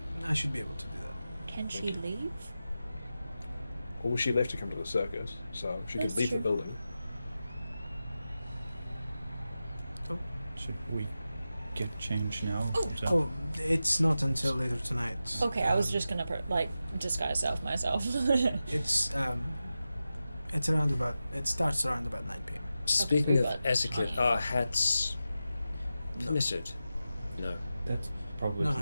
I should be able to do that. Can she leave? Well, she left to come to the circus, so she That's could leave true. the building. Should we get changed now? Oh. Is that- Oh, it's not until later tonight. Okay, I was just gonna disguise myself. It's around about. It starts around about 9 p.m. Speaking of but- etiquette, are hats permitted? No. That's probably No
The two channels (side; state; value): both; inverted; correlation -0.92